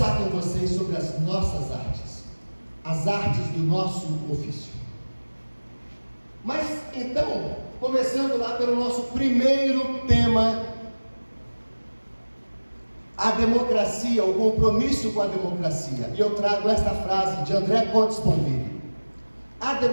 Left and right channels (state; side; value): inverted; both; correlation -1.00